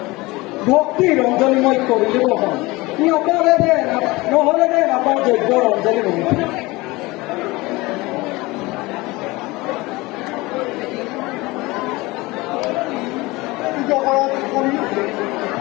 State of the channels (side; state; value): right; quieter; 21.9 dB